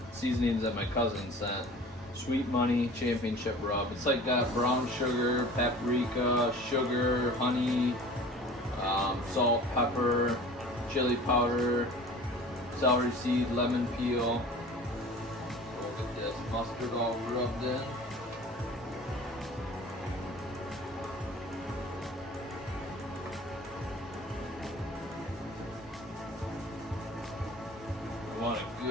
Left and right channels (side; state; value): both; normal; correlation 0.43